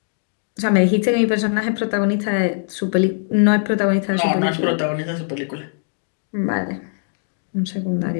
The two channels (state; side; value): silent; right; digital silence